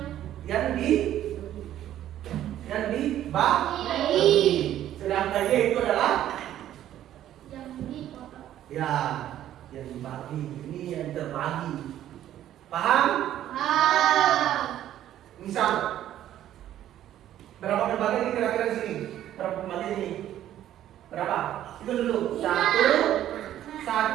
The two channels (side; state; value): left; quieter; 12.0 dB